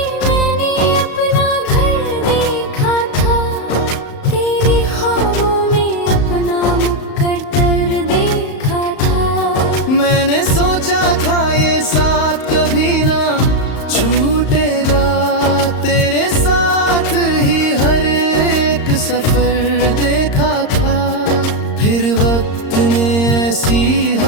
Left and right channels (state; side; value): late; right; 35 ms